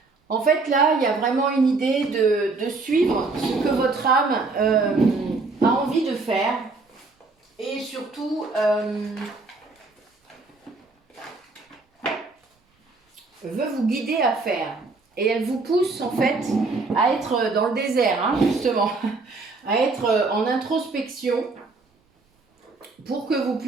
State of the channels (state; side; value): quieter; left; 3.8 dB